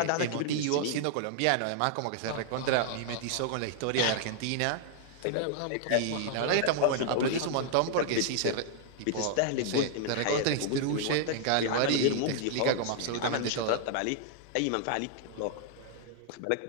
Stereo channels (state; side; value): different; both; correlation -0.01